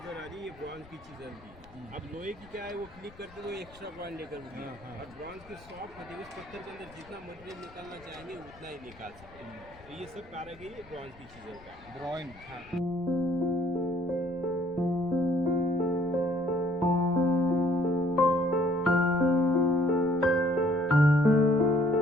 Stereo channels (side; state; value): left; noise; rumble, 23 dB below the sound